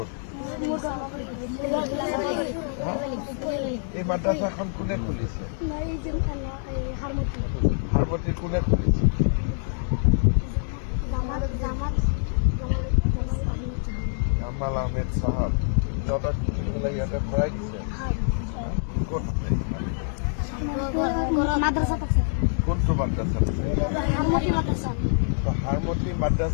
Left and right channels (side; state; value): right; silent; digital silence